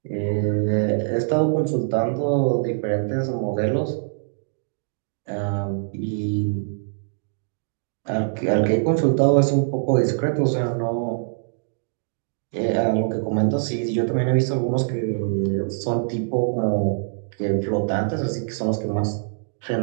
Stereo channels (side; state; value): left; silent; digital silence